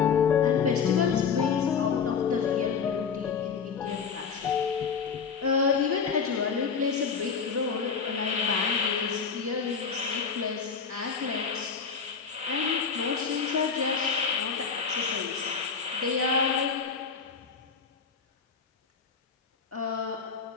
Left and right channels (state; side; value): quieter; right; 6.0 dB